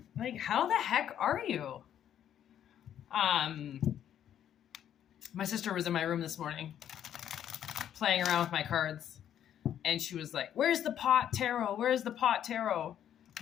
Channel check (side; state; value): right; quieter; 10.2 dB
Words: Like, how the heck are you? Um, my sister was in my room this morning playing around with my cards, and she was like, "Where's the pot tarot? Where's the pot tarot?"